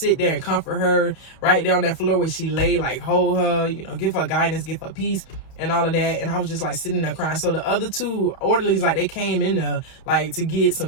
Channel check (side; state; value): right; late; 31 ms